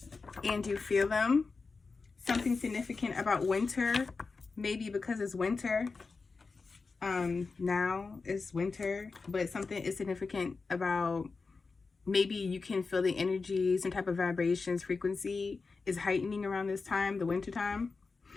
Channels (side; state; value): right; quieter; 4.3 dB